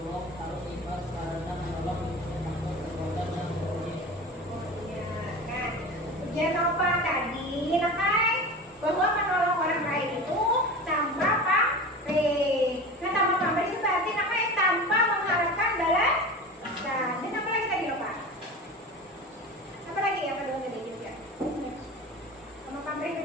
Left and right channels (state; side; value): normal; both; correlation 0.32